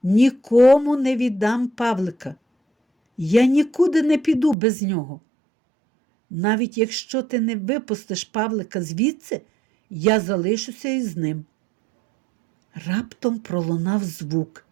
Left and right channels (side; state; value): left; drops out; at 4.5 s